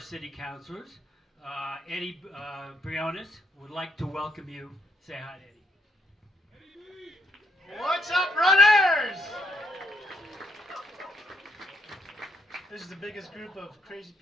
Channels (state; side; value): normal; both; correlation 0.73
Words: councilors, Eddie Briones, would like to welcome you. Say hi, Eddie. What's up, runners? This is the biggest group of crazy